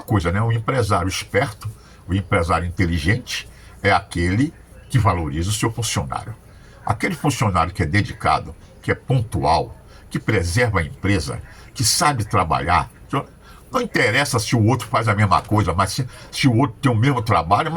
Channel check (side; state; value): both; identical; correlation 1.00